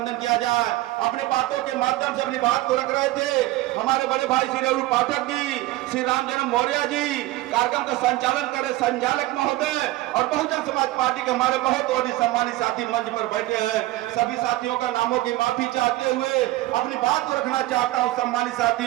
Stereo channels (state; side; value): quieter; left; 17.6 dB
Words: किया जाए। अपने बातों के माध्यम से अपनी बात को रख रहे थे हमारे बड़े भाई श्री रघु पाठक जी, श्री रामजन्म मौर्य जी, कार्यक्रम का संचालन करे संचालक महोदय और बहुजन समाज पार्टी के हमारे बहुत और सम्मानित साथी मंच पर बैठे हैं। सभी साथियों का नामों की माफी चाहते हुए अपनी बात को रखना चाहता हूं। सम्मानित